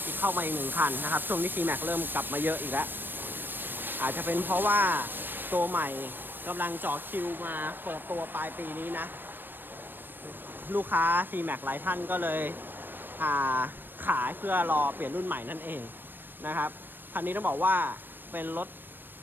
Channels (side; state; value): left; late; 0.094 ms